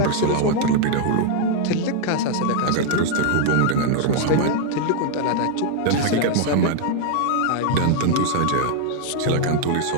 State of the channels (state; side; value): different; both; correlation 0.00